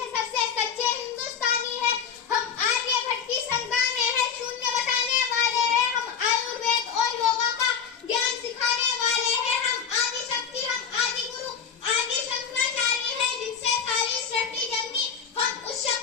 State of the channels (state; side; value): quieter; right; 7.0 dB